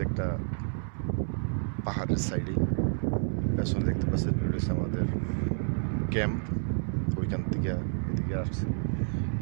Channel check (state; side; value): silent; left; 58 dB below the other